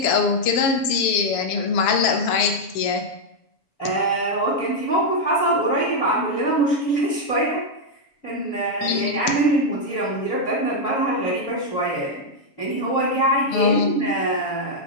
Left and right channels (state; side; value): late; right; 7.2 ms